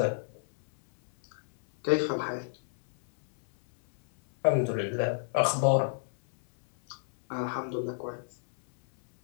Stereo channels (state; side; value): silent; right; 58 dB below the other